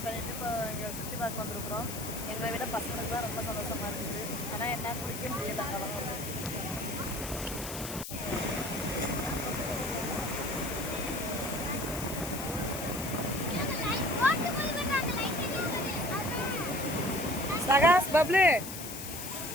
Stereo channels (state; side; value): noise; left; hiss, 8 dB below the sound